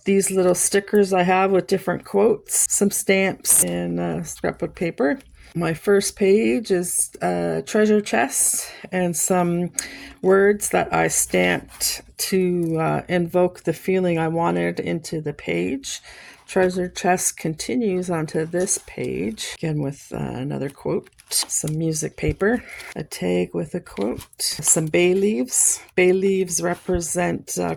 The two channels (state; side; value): identical; both; correlation 1.00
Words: These little stickers I have with different quotes, some stamps, and scrapbook paper. My first page is a treasure chest and some words that I stamped to invoke the feeling I wanted into the page. Treasure chest continues onto this page, again with another quote, some music paper, a tag with a quote, some bay leaves. Bay leaves represent